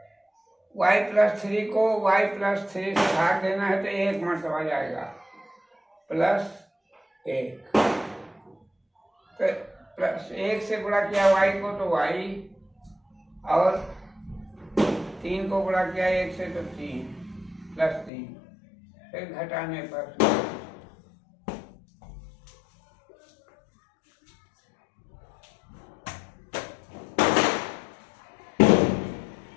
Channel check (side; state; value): right; drops out; at 18.1 s